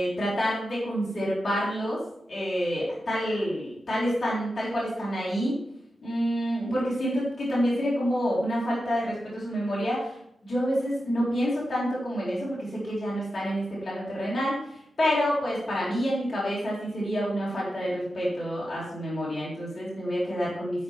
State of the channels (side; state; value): both; normal; correlation 0.90